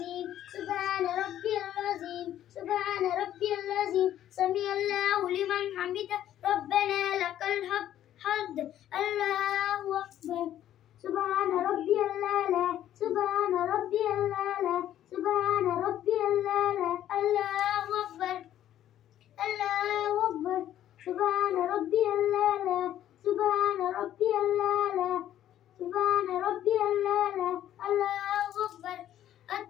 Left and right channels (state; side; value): quieter; right; 11.8 dB